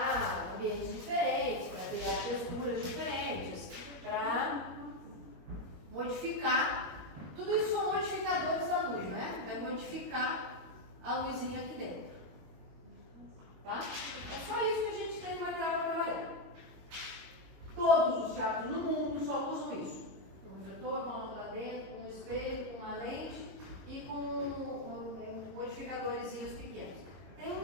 ambientes diferentes, para criar texturas diferentes, para modificar. Tudo isso são modificadores da luz, né? É modificar a luzinha aqui dentro. Tá? É só isso que a gente tem de material para trabalhar. Todos os teatros no mundo só usam isso. Um refletor, com uma lâmpada dentro, com um espelho, com uma lente e com modificadores pequenos. Tem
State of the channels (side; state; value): left; late; 22 ms